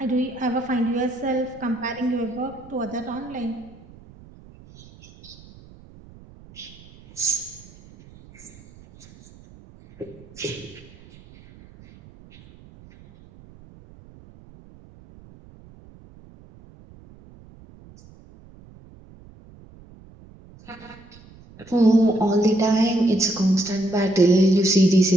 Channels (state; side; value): noise; right; rumble, 23 dB below the sound